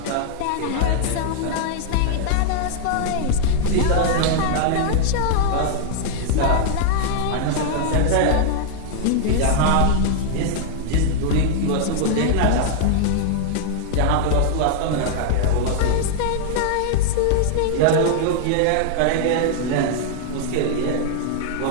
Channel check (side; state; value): both; different; correlation -0.01